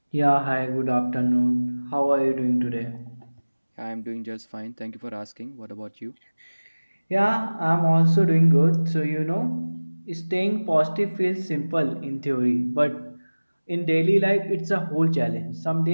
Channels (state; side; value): inverted; both; correlation -1.00